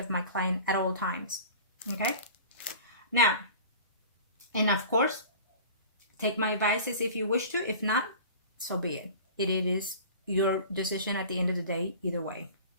my client at all times, okay? Now, and of course, take my advices if you wish to. If not, so be it. It is your decision at the end of the day, either way,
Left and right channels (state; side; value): inverted; both; correlation -0.40